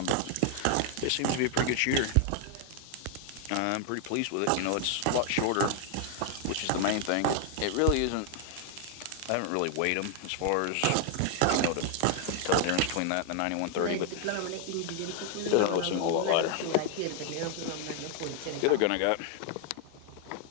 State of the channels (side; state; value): both; different; correlation 0.00